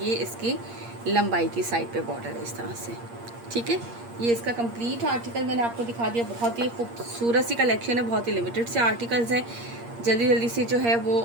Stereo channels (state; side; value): late; left; 8.6 ms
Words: इसकी लंबाई की साइड पे बॉर्डर है इस तरह से, ठीक है। ये इसका कंप्लीट आर्टिकल मैंने आपको दिखा दिया। बहुत ही खूबसूरत सी कलेक्शन है, बहुत ही लिमिटेड से आर्टिकल्स हैं। जल्दी जल्दी से जो है वो